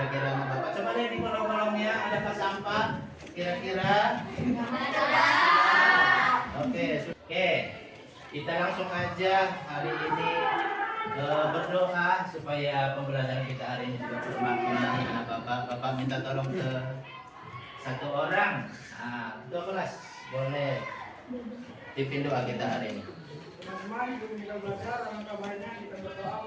anak bapak coba lihat di kolong-kolongnya adakah sampah? Kira-kira? Oke, kita langsung aja hari ini berdoa supaya pembelajaran kita hari ini juga bermakna. Anak bapak minta tolong ke satu orang. Ketua kelas boleh pimpin doa kita hari ini. Teman-teman, sebelum kita belajar, alangkah baiknya kita berdoa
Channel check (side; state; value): both; identical; correlation 1.00